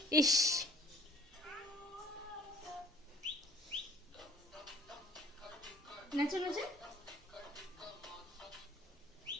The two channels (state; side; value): normal; both; correlation 0.55